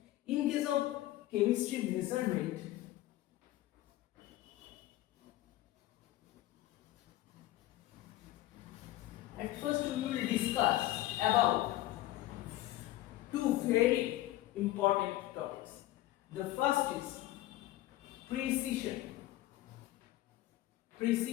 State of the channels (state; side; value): quieter; right; 15.9 dB